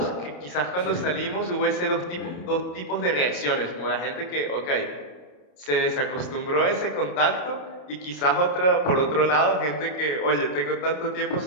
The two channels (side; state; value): right; late; 28 ms